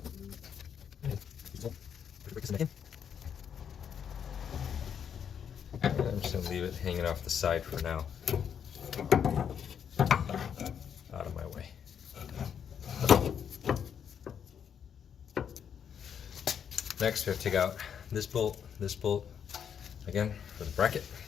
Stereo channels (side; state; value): right; quieter; 8.0 dB